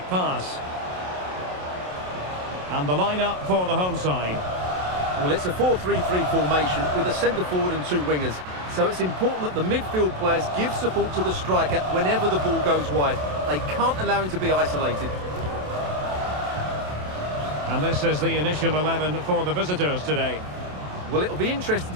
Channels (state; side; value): late; left; 27 ms